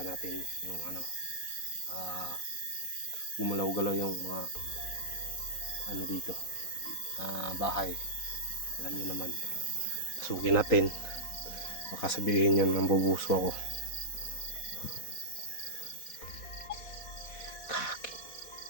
natin yung gumalaw-galaw yung mga dito, bahay. Alam niyo naman, pasukin natin, baka sabihin yun nambubuso ako.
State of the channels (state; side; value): late; right; 4.1 ms